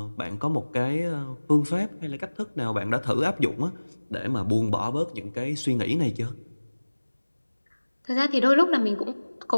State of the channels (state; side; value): inverted; both; correlation -1.00